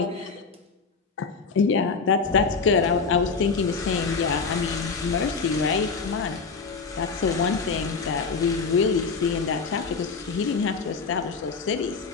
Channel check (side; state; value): right; quieter; 4.9 dB